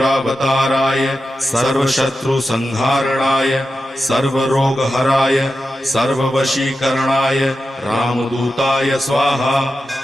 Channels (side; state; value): both; normal; correlation 0.91